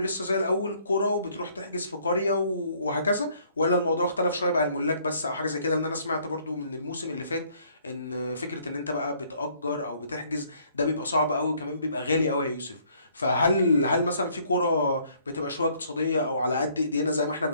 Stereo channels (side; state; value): both; inverted; correlation -0.63